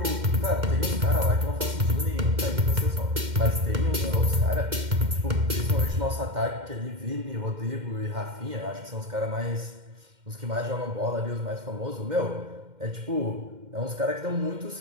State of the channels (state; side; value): late; left; 2.1 ms